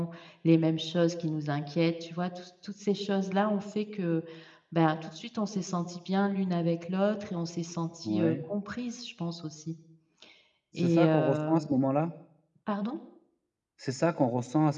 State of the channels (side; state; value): both; identical; correlation 1.00